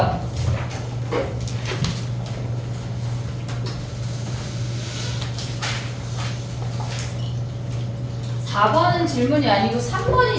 4번은 질문이 아니고 3번이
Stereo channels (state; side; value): identical; both; correlation 1.00